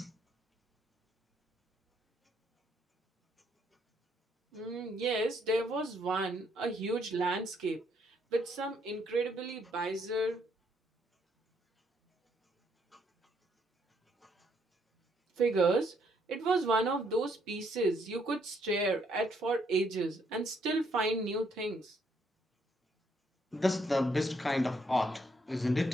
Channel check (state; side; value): normal; both; correlation 0.71